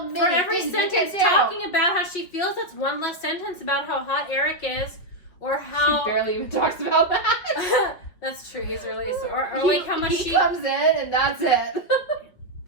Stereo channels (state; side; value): late; right; 5.5 ms